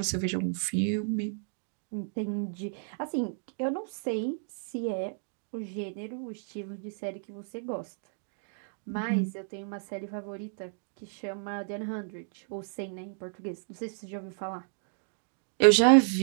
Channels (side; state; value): left; silent; digital silence